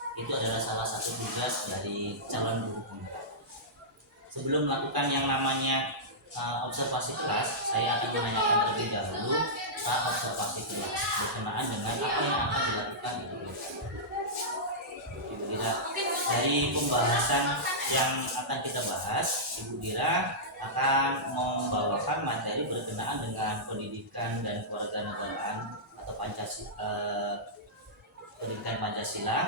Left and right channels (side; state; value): both; normal; correlation -0.13